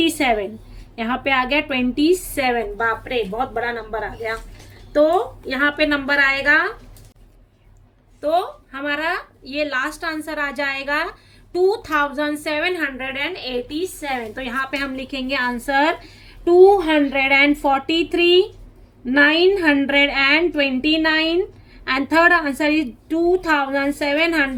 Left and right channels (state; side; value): identical; both; correlation 1.00